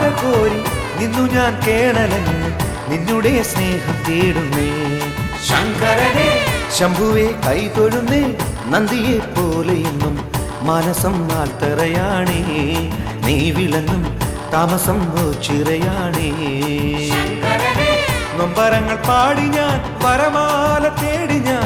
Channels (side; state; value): both; identical; correlation 1.00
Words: കോരി നിന്നു ഞാൻ കേണലങ്ങ്, നിന്നുടെ സ്നേഹം തേടുന്നേ. ശങ്കരനെ ശംഭുവെ കൈതൊഴുന്നേ നന്ദിയെ പോലെയെന്നും മനസം നാട്ടറയാണേ, നീ വിളങ്ങും താമസം ചിറയാണേ. നൊമ്പരങ്ങൾ പാടി ഞാൻ വരമാല തേടി